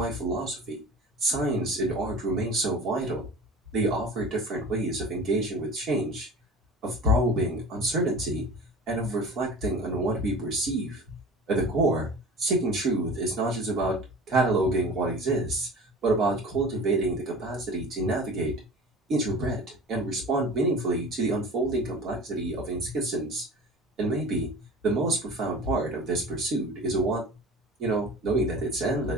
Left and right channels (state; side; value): normal; both; correlation 0.38